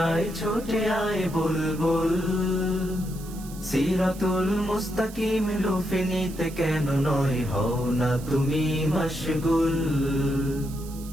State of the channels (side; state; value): right; noise; hiss, 18 dB below the sound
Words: আয় ছুটে আয় বুলবুল সিরাতুল মুস্তাকিম লুফে নিতে কেন নয় হও না তুমি মশগুল।